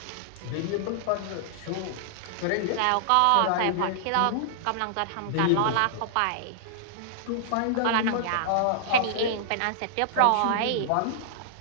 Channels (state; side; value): different; both; correlation -0.01